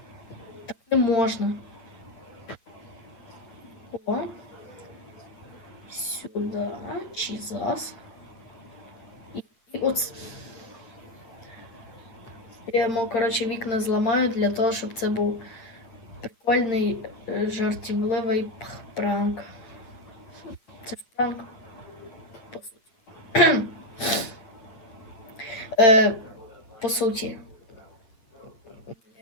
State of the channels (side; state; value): right; late; 8.9 ms